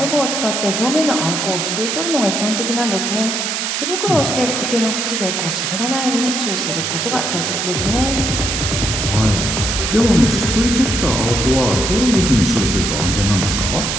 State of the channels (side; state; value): right; noise; hiss, 1 dB below the sound